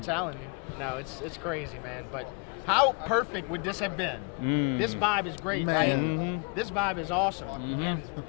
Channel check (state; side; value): quieter; right; 34.5 dB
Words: you. You know, it's crazy, man. But how perfect would this have been? This vibe is great, right? This vibe is awesome. And